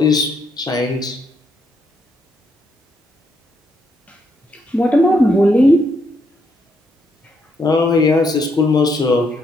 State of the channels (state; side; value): normal; both; correlation 0.76